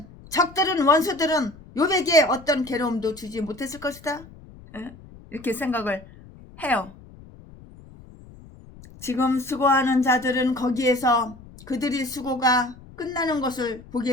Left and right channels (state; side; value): noise; left; rumble, 21 dB below the sound